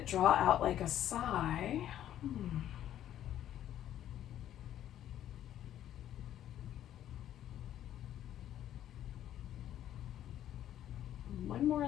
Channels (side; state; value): right; quieter; 11.5 dB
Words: draw out like a sigh.